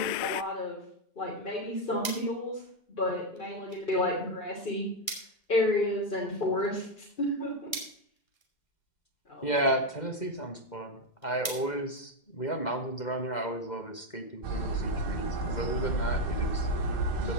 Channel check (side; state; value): right; late; 1.6 ms